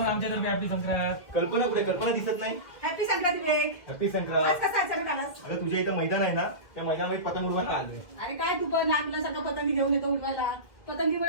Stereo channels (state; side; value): late; right; 2.1 ms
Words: आमच्यातर्फे हॅपी संक्रांत. कल्पना कुठे? कल्पना दिसत नाही. हॅपी संक्रांत विवेक. हॅपी आज संक्रांत. कसा अचानक आलास? अगं तुझ्या इथं मैदान आहे ना, त्या मैदानामध्ये पतंग उडवायला आलोय. अरे काय तू पण लहान मुलांसारखं पतंगी घेऊन येतो उडवायला.